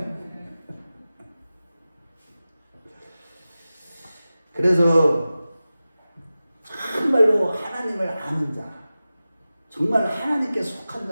그래서 정말로 하나님을 아는 자, 정말 하나님께 속한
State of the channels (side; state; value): both; inverted; correlation -0.95